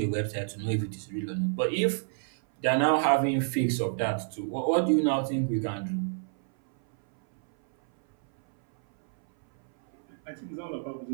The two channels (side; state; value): left; silent; 59 dB below the other